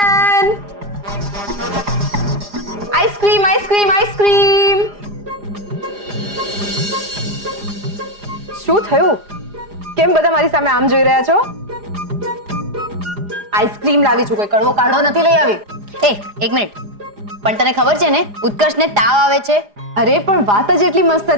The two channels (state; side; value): late; left; 4.9 ms